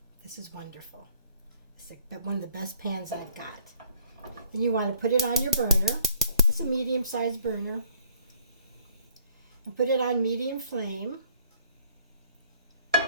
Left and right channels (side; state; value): both; inverted; correlation -0.61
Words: This is wonderful. It's one of the best pans I've got. Then you want to put it on your burner. It's a medium-sized burner. And put it on medium flame.